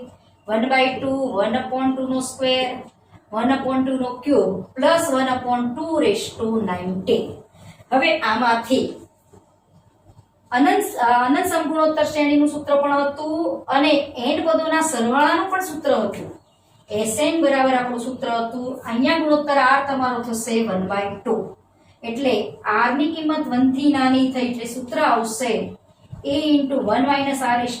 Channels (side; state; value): both; identical; correlation 1.00